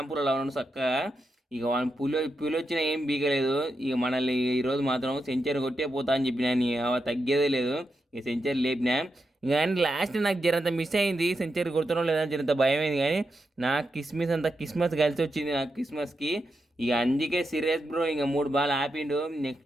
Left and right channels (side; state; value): both; normal; correlation 0.86